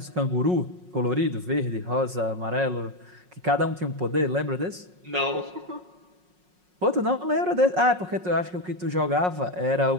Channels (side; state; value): left; late; 5.5 ms